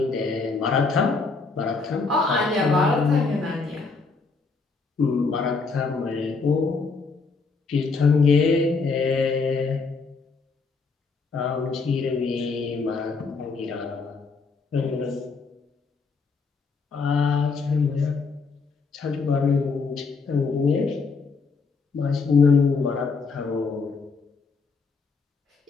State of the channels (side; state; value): right; quieter; 4.5 dB